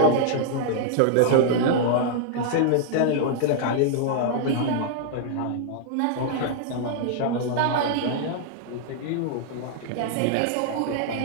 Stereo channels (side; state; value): both; different; correlation -0.01